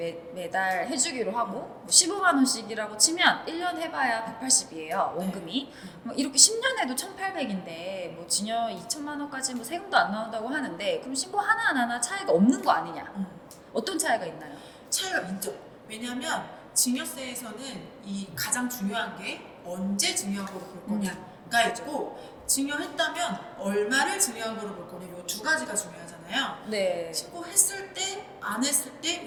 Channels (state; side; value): identical; both; correlation 1.00